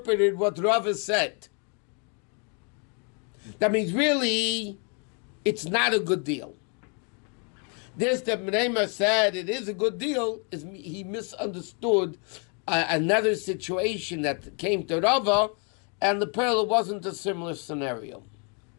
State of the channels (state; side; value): quieter; right; 38.1 dB